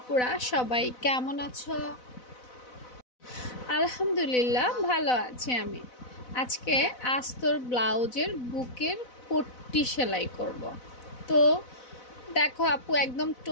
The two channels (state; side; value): late; right; 4.0 ms